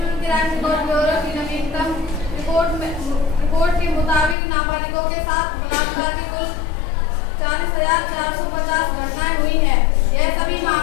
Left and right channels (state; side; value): drops out; right; at 4.4 s